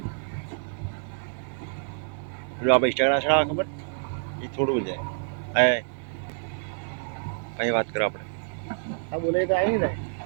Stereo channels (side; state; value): left; silent; 57 dB below the other